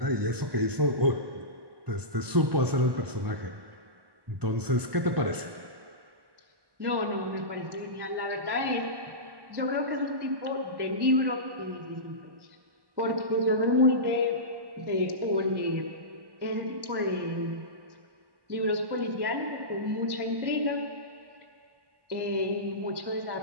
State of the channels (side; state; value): left; late; 1.1 ms